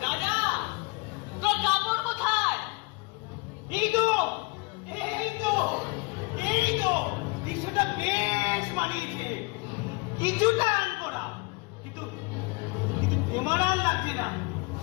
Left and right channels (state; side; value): quieter; right; 27.1 dB